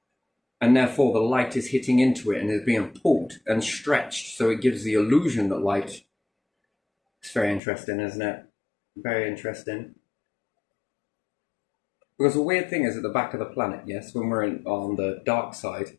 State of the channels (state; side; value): drops out; right; at 7.6 s